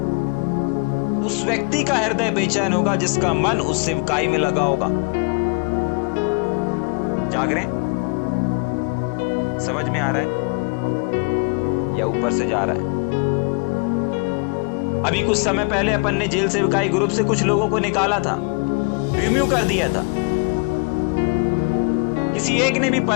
उस व्यक्ति का हृदय बेचैन होगा जिसका मन उस सेवकाई में लगा होगा। जाग रहे, समझ में आ रहा है या ऊपर से जा रहा है? अभी कुछ समय पहले अपन ने जेल सेवकाई ग्रुप से कुछ लोगों को निकाला था, रिम्यू कर दिया था। किसी एक ने भी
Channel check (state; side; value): quieter; right; 34.2 dB